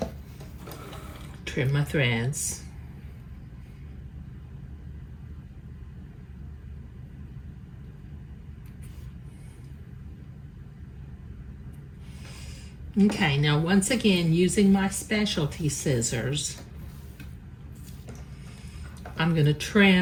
Trim my threads. Okay, now once again, using my specialty scissors, I'm going to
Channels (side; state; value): both; identical; correlation 1.00